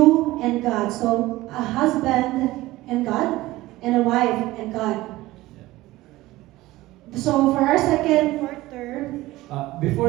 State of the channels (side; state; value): left; quieter; 17.9 dB